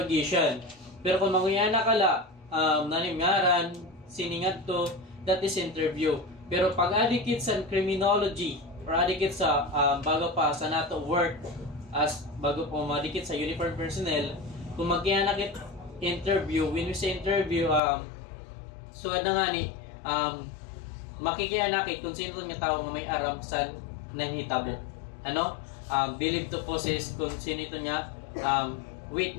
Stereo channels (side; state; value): right; drops out; at 17.8 s